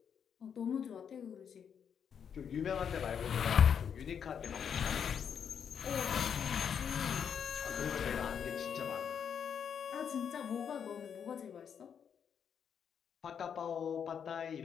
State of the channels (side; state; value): right; quieter; 7.7 dB